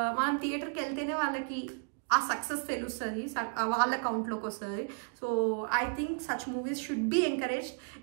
మనం థియేటర్కి వెళ్తేనే వాళ్ళకి ఆ సక్సెస్ తెలుస్తుంది, వాళ్ళ అకౌంట్లోకి వస్తుంది. So I think such movies should be encouraged.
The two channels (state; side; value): quieter; left; 38.6 dB